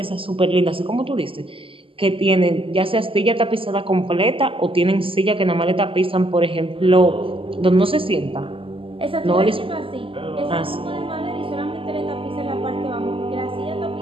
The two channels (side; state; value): left; late; 0.26 ms